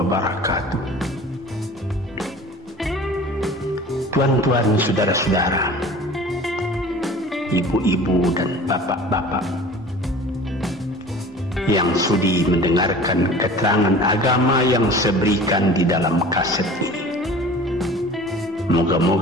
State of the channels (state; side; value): normal; both; correlation 0.42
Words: Tuan-tuan, saudara-saudara, ibu-ibu dan bapak-bapak yang sudi mendengarkan keterangan agama yang saya berikan di dalam kaset ini.